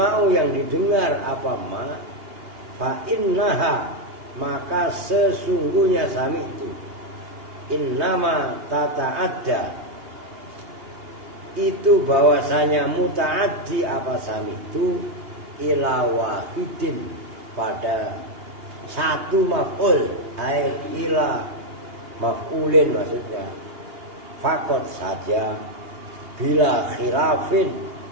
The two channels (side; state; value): left; late; 2.8 ms